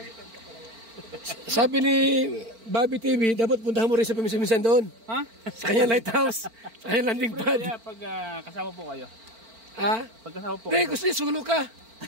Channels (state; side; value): late; left; 4.4 ms